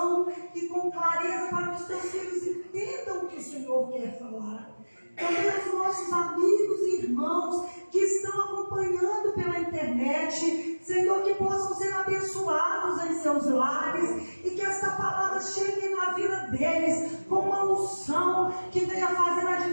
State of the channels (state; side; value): inverted; both; correlation -1.00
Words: e com clareza para que os teus filhos entendam o que o Senhor quer falar. Também os nossos amigos e irmãos que estão acompanhando pela internet, Senhor, que possam ser abençoados em seus lares e que esta palavra chegue na vida deles com uma unção que venha fazer a